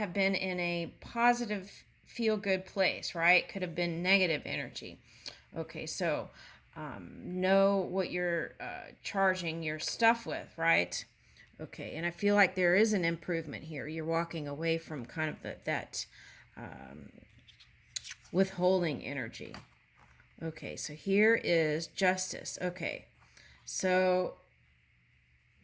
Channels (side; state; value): both; identical; correlation 1.00